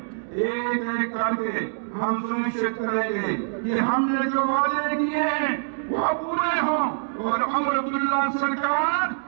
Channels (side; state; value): left; silent; digital silence